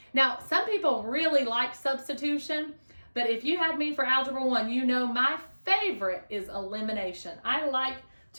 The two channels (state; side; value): inverted; both; correlation -1.00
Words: Now, some people really like substitution, but if you had me for Algebra 1, you know my favorite is elimination. I like